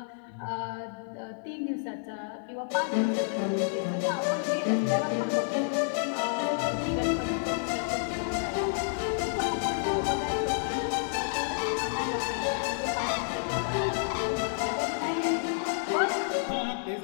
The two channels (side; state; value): right; silent; digital silence